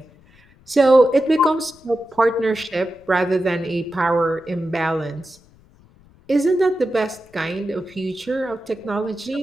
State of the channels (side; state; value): left; noise; rumble, 28 dB below the sound